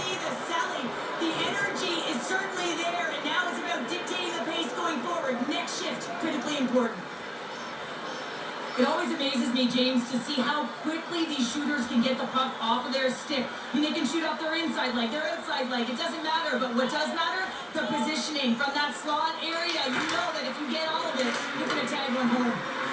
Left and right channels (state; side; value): identical; both; correlation 1.00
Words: see the selling. The energy is certainly there, and now it's about dictating the pace going forward. Next shift, critically important. It always amazes me, James, to see how quickly these shooters can get the puck off of their stick. I mean, they can shoot off their inside leg, their outside leg. It doesn't matter. But what does matter? The positioning from that slot area. You know that if you get all of it, you're going to tag one home.